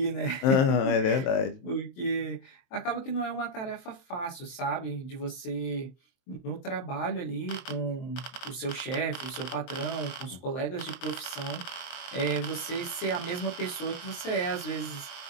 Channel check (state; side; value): late; right; 23 ms